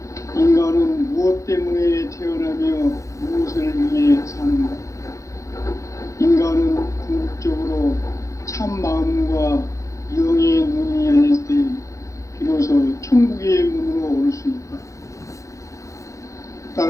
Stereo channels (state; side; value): late; right; 0.15 ms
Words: 인간은 무엇 때문에 태어나며 무엇을 위해 사는가? 인간은 궁극적으로 참 마음과 영의 눈이 열릴 때 비로소 천국의 문으로 올 수 있다.